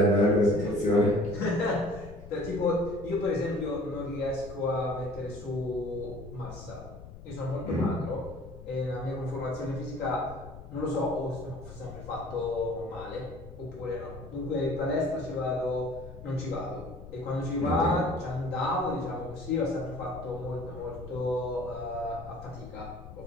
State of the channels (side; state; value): left; noise; rumble, 14 dB below the sound